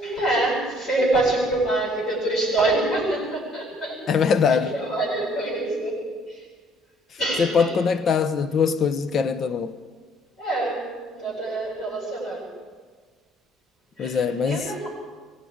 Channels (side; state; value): both; normal; correlation 0.62